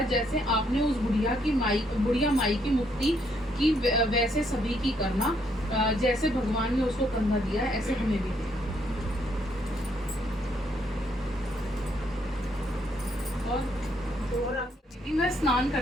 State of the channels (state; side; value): normal; both; correlation 0.72